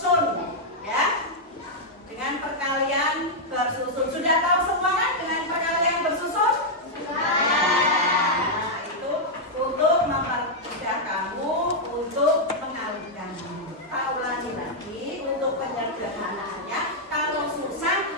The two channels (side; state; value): both; normal; correlation -0.04